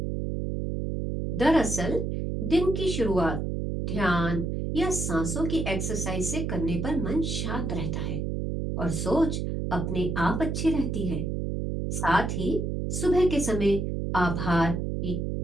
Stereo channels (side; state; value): right; noise; hum, 2 dB below the sound